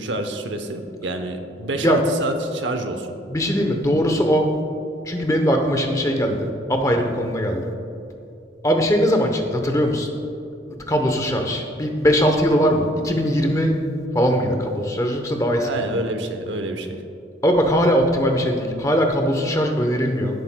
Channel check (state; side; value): normal; both; correlation 0.61